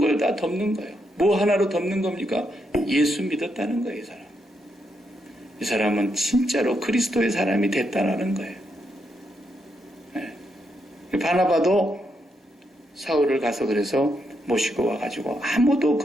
다 덮는 거예요. 뭐 하나로 덮는 겁니까? 예수 믿었다는 거예요, 이 사람. 이 사람은 진짜로 그리스도의 사람이 됐다는 거예요. 네. 바나바도 사울을 가서 그래서 모시고 와가지고 아무도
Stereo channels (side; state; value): both; normal; correlation 0.80